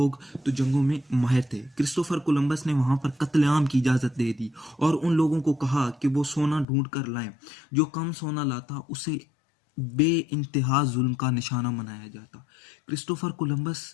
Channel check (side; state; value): right; drops out; at 6.7 s